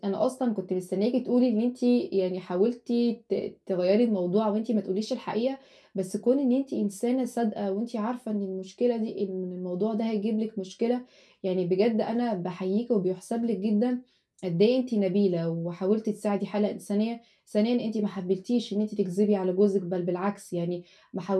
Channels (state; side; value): identical; both; correlation 1.00